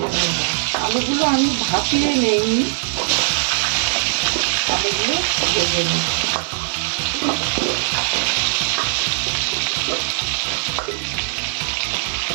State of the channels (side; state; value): left; silent; digital silence